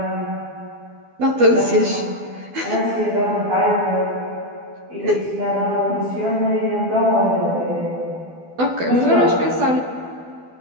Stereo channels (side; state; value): left; late; 12 ms